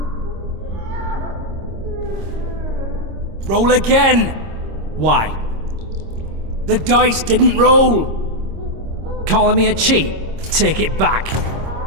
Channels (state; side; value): late; left; 26 ms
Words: Roll again! Why? The dice didn't roll! Calling me a cheat? Take it back.